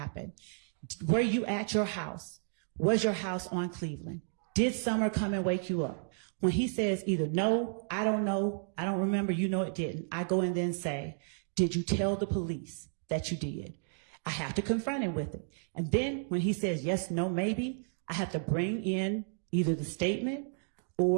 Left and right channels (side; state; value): left; silent; digital silence